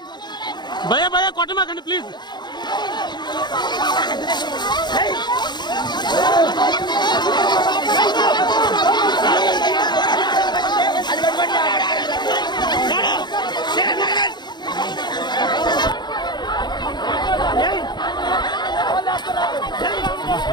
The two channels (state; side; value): late; right; 0.21 ms